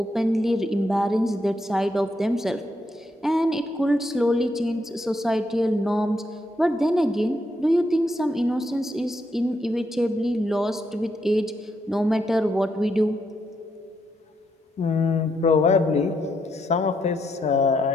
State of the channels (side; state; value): both; normal; correlation 0.78